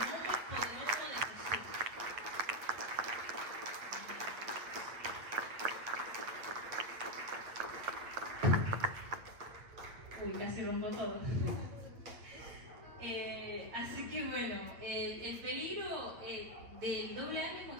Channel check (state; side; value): late; left; 8.7 ms